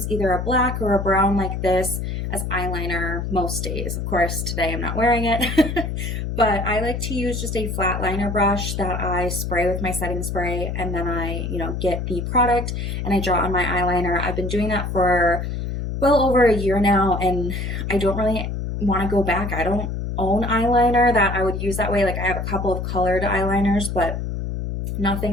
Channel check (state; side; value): noise; left; hum, 3 dB below the sound